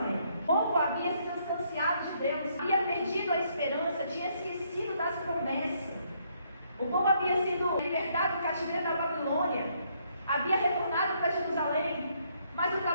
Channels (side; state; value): both; inverted; correlation -0.71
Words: O povo havia se distanciado de Deus, havia perdido a esperança, tinha esquecido das promessas. O povo havia sido libertado do cativeiro da Babilônia, havia retornado para Jerusalém, mas o